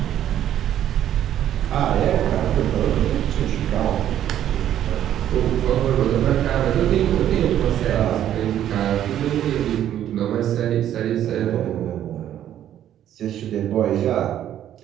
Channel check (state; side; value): quieter; left; 11.1 dB